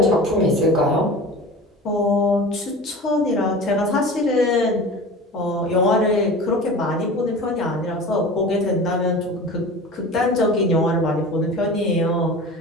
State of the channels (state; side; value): normal; both; correlation 0.36